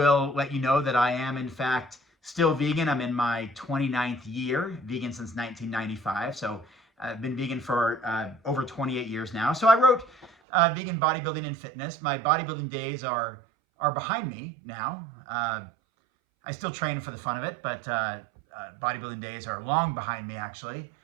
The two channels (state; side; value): drops out; left; at 10.4 s